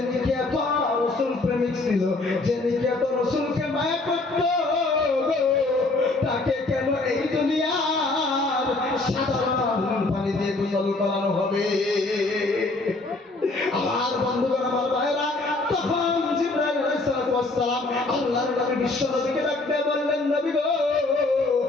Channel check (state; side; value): quieter; right; 3.2 dB